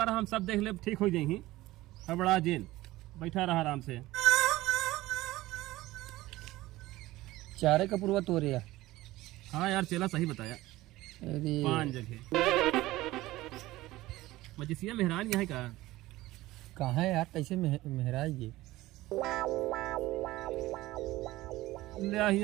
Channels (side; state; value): left; quieter; 17.7 dB